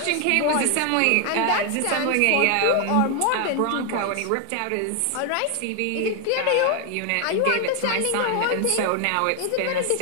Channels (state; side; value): different; both; correlation 0.00